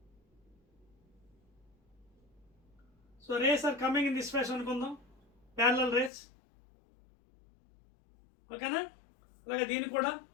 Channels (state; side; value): drops out; right; at 6.1 s